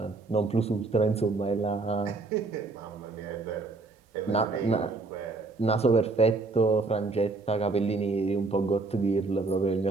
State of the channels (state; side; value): quieter; left; 3.7 dB